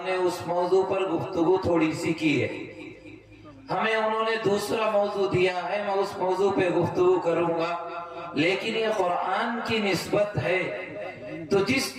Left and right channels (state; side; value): identical; both; correlation 1.00